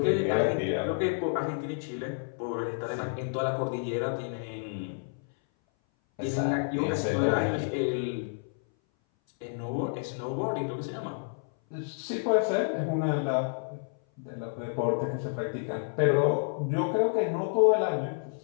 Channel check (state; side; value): silent; right; 58 dB below the other